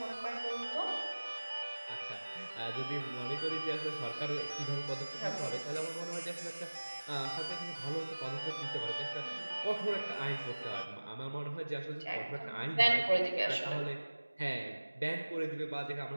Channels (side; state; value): both; inverted; correlation -1.00